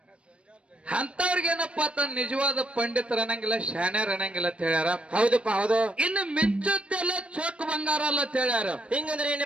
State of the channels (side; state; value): left; late; 0.060 ms